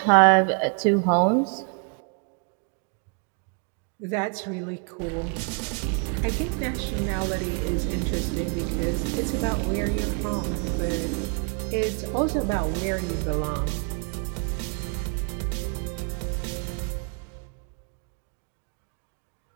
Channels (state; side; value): quieter; left; 39.4 dB